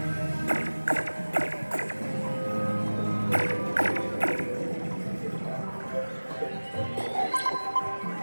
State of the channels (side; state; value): both; inverted; correlation -1.00